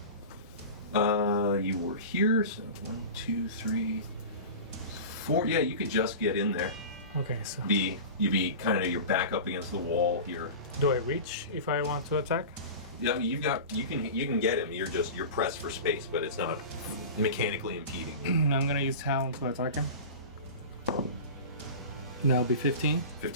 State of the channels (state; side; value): inverted; both; correlation -0.32